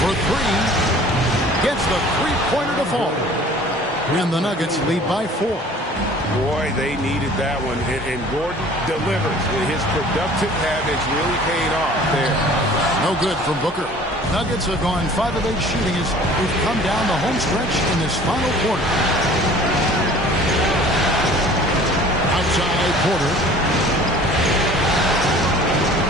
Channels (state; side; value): normal; both; correlation 0.49